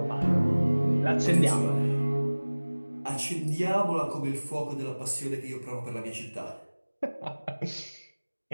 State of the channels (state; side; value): inverted; both; correlation -1.00